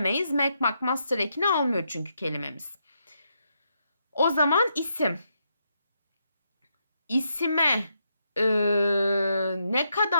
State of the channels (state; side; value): inverted; both; correlation -0.80